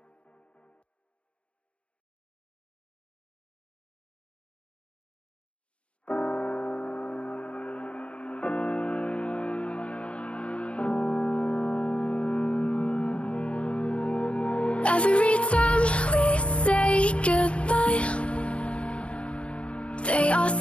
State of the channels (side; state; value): right; late; 0.060 ms